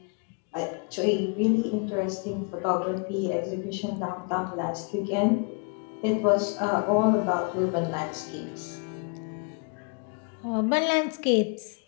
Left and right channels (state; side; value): quieter; right; 35.5 dB